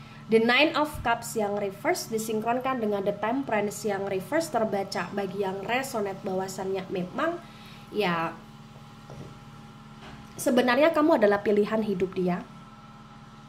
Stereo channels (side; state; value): both; identical; correlation 1.00